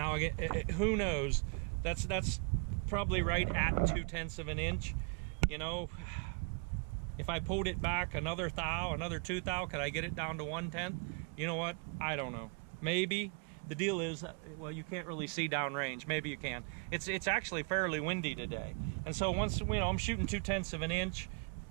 again, who knows? That's probably right at 2/10 of an inch. You know, if I pulled it back another thou, another 2 thou, could I get it down to 1/10? You know what? I don't know. Maybe. The deal is, well, you can't really see downrange. Maybe you can. It's actually fairly windy today, and so once, you know, I'm shooting 2/10 of an inch.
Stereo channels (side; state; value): left; quieter; 37.1 dB